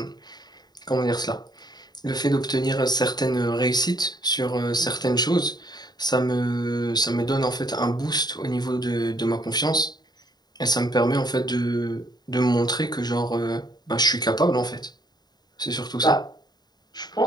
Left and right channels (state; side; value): late; right; 0.20 ms